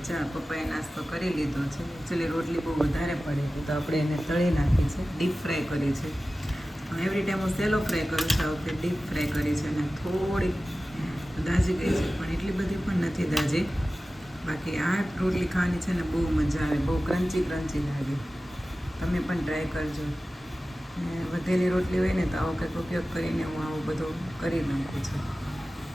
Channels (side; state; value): both; normal; correlation 0.95